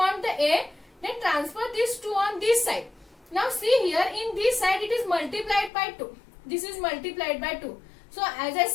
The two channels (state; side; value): drops out; right; at 5.7 s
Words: the A, then transfer this 2 on this side. Now see here, in this side it is multiplied by 2. This is multiplied by 2. So as I